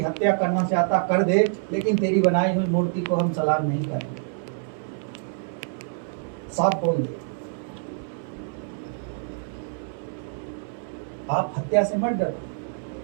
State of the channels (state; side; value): silent; left; 61 dB below the other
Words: हत्या करना चाहता कर दे, लेकिन तेरी बनाई हुई मूर्ति को हम सलाम नहीं करेंगे, साफ बोल दे। आप हत्या से मत डरो,